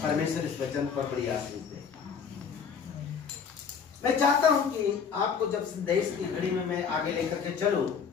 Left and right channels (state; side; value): quieter; right; 6.5 dB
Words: परमेश्वर इस वचन पर बड़ी आशीष दे। मैं चाहता हूं कि आपको जब संदेश की घड़ी में मैं आगे लेकर के चलूं